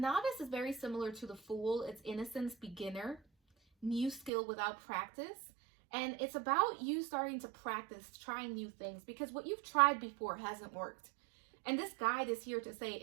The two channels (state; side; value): drops out; left; at 4.3 s